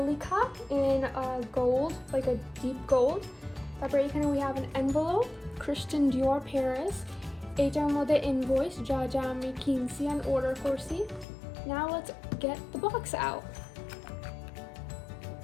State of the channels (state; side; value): drops out; right; at 11.2 s